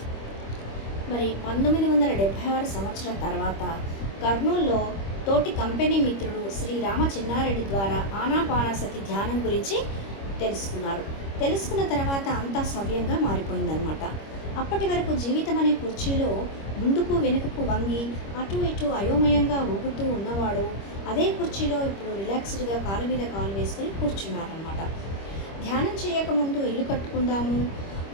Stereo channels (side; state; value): right; late; 25 ms